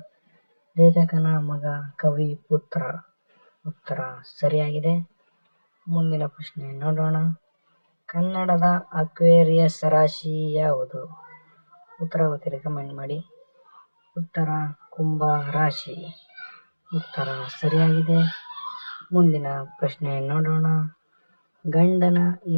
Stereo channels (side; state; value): both; inverted; correlation -1.00